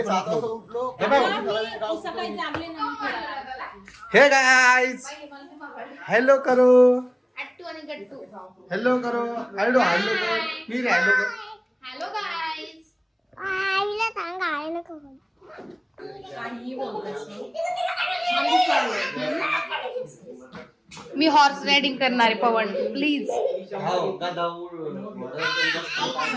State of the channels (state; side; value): identical; both; correlation 1.00